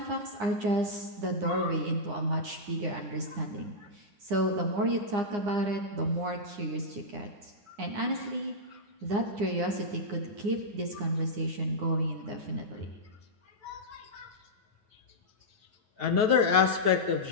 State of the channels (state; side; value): late; left; 9.8 ms